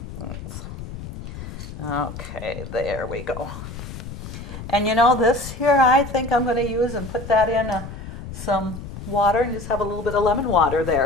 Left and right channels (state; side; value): noise; left; rumble, 10 dB below the sound